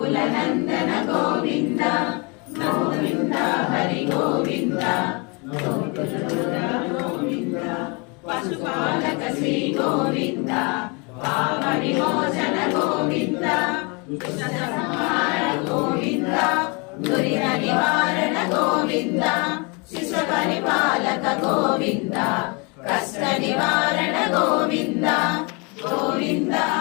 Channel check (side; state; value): right; quieter; 31.3 dB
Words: నందన గోవింద గోవింద హరి గోవింద గోవింద పశుపాలక శ్రీ గోవింద పాప విమోచన గోవింద సంహార గోవింద దురిత నివారణ గోవింద శిశు పరిపాలక గోవింద కష్ట నివారణ గోవింద గోవింద